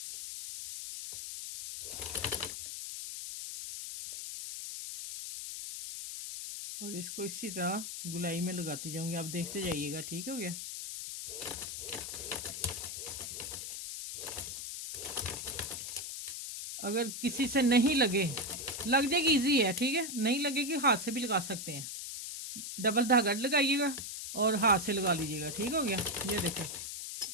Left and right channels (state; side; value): noise; left; hiss, 7 dB below the sound